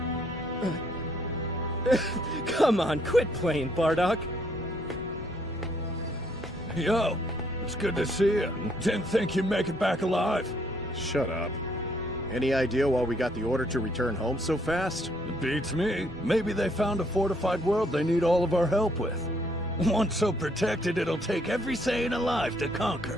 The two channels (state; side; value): normal; both; correlation 0.68